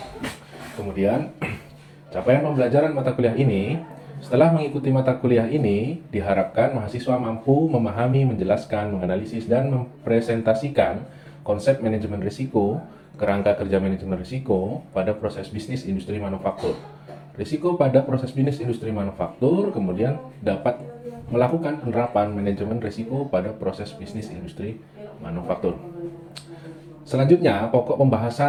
Kemudian, capaian pembelajaran mata kuliah ini. Setelah mengikuti mata kuliah ini, diharapkan mahasiswa mampu memahami, menjelaskan, menganalisis, dan mempresentasikan konsep manajemen risiko, kerangka kerja manajemen risiko pada proses bisnis industri manufaktur. Risiko pada proses bisnis industri manufaktur kemudian dapat melakukan penerapan manajemen risiko pada proses bisnis industri manufaktur. Selanjutnya, pokok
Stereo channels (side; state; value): both; identical; correlation 1.00